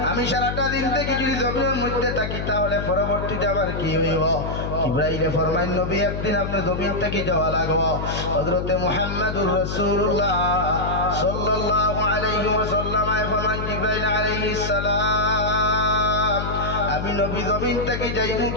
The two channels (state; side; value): noise; left; hum, 4 dB below the sound